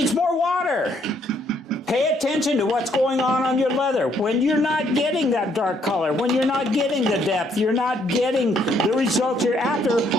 more water. Pay attention to what's going on your leather. When you're not getting that dark color, when you're not getting the depth, you're not getting the results you're after,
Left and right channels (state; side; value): normal; both; correlation 0.69